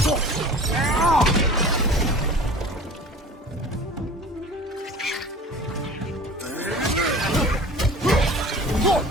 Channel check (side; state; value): both; normal; correlation 0.42